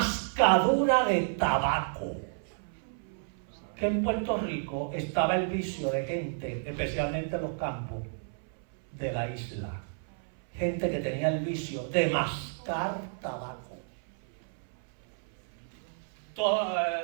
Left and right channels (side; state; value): left; silent; 57 dB below the other